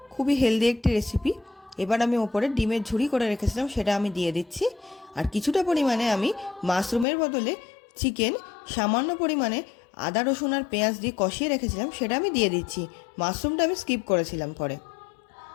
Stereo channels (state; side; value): drops out; right; at 7.1 s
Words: খুবই হেলদি একটি রেসিপি। এবার আমি ওপরে ডিমের ঝুড়ি করে রেখেছিলাম, সেটা আমি দিয়ে দিচ্ছি। আর কিছুটা পরিমাণে আমি মাশরুমের বদলে চিকেন সামান্য পরিমাণে আদা রসুন আর পেঁয়াজ দিয়ে কষিয়ে রেখেছিলাম, সেটা আমি দিয়ে দিচ্ছি। মাশরুমটা আমি স্কিপ করেছিলাম পরে।